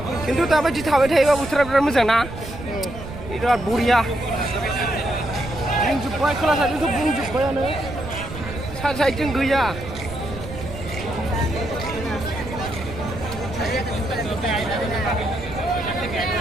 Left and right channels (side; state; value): right; noise; rumble, 11 dB below the sound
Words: खिन्थु दाबायदि थाबाय थायोबा बोथोरा बिराद मोजां ना? बिराद बरिया। बुंजोब्बाय खोला साइडजोंथ' बुंजोब्बायानो। सा साइडजों गैया।